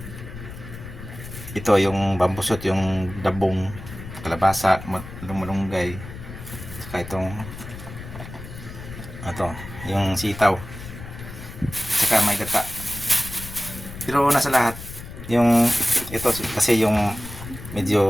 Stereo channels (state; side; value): noise; left; rumble, 12 dB below the sound